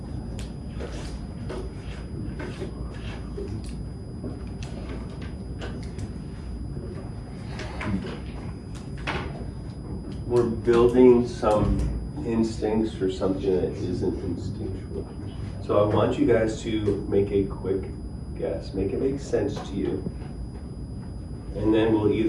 We're building some instincts for something that isn't instinctual. So I want you guys to make a quick guess, make it make sense to you. And then we'll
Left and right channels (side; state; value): both; identical; correlation 1.00